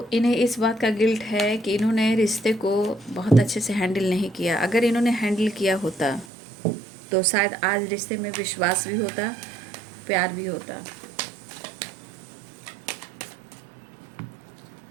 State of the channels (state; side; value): drops out; left; at 6.2 s